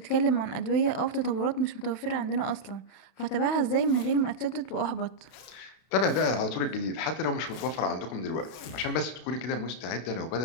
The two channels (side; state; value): right; late; 32 ms